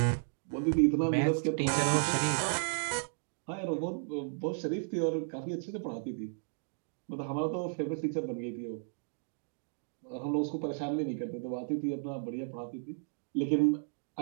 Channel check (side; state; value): left; silent; digital silence